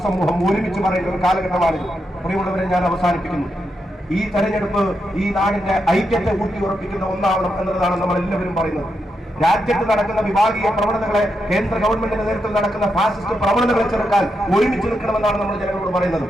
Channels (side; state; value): both; normal; correlation 0.84